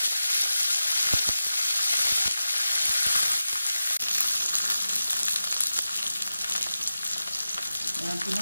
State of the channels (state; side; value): inverted; both; correlation -0.92